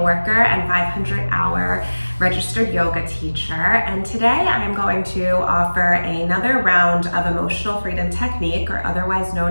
worker and 500-hour registered yoga teacher. And today I'm going to offer another round of emotional freedom technique, or otherwise known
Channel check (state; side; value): inverted; both; correlation -1.00